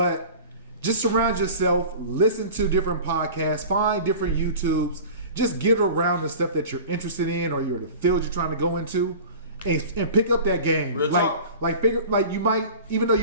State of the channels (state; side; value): inverted; both; correlation -0.38